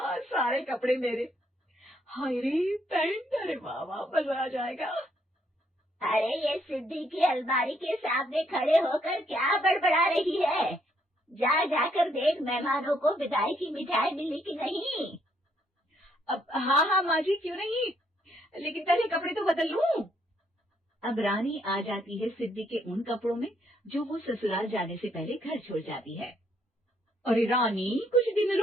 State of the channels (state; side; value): normal; both; correlation 0.71